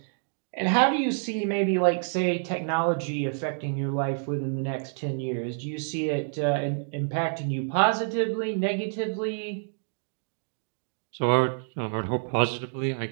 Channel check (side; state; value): left; silent; digital silence